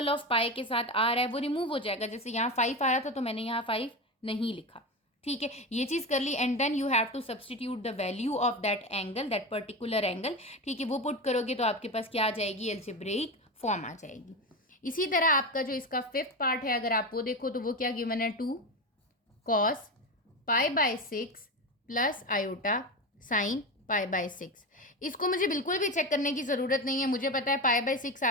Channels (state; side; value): normal; both; correlation 0.21